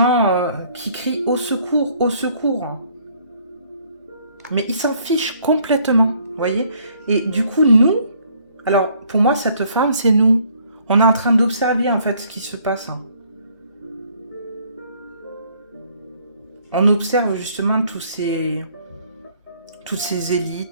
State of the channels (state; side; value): inverted; both; correlation -0.63